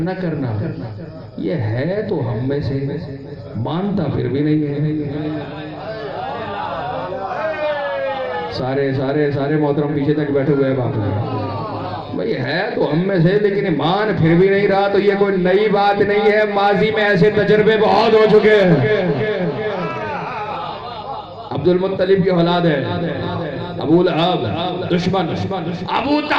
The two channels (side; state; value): both; identical; correlation 1.00